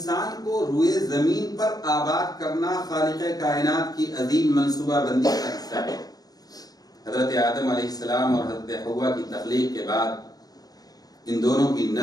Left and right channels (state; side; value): late; right; 0.18 ms